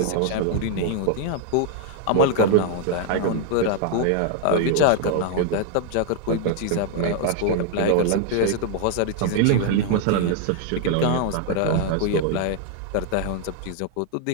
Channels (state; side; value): different; both; correlation 0.00